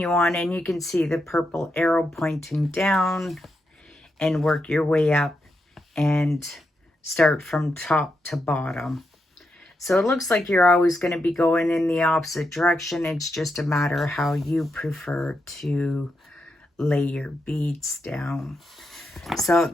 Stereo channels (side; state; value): both; normal; correlation 0.84